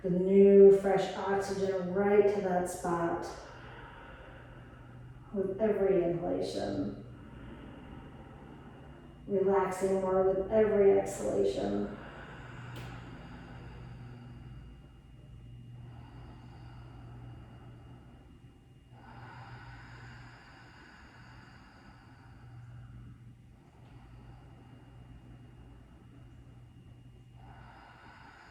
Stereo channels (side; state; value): both; identical; correlation 1.00